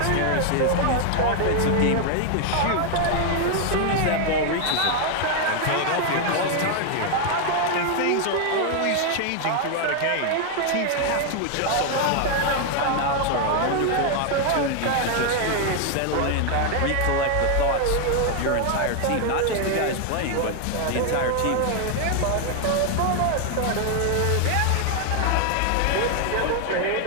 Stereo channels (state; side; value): different; both; correlation 0.00